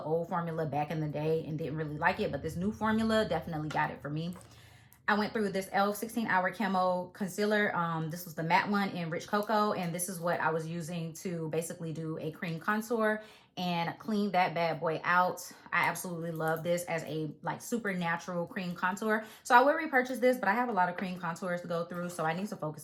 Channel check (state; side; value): identical; both; correlation 1.00